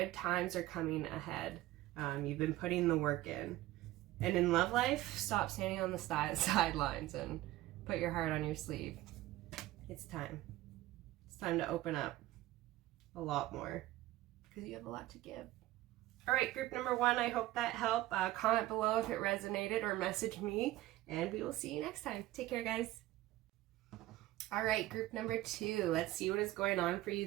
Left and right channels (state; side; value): quieter; left; 16.4 dB